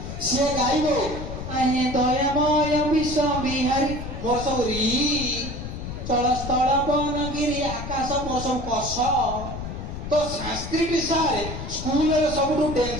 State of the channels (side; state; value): left; noise; rumble, 8 dB below the sound